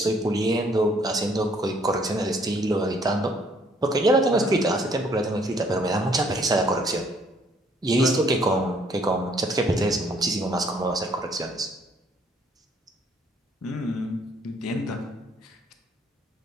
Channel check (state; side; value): normal; both; correlation 0.64